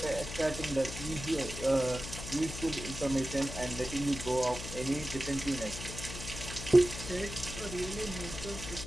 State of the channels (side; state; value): left; noise; hum, 9 dB below the sound